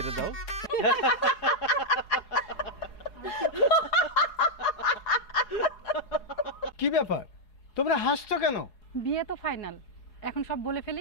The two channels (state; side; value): late; right; 4.8 ms